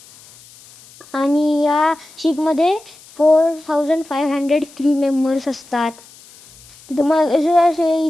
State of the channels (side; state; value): left; noise; hiss, 24 dB below the sound